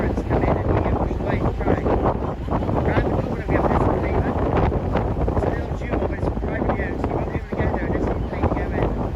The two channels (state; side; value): identical; both; correlation 1.00